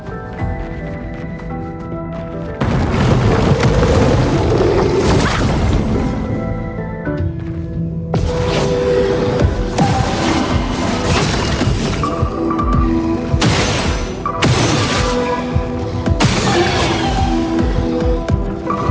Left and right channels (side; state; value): both; identical; correlation 1.00